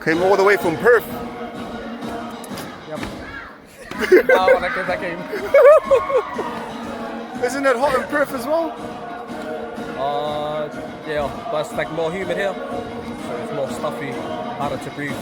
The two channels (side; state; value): both; identical; correlation 1.00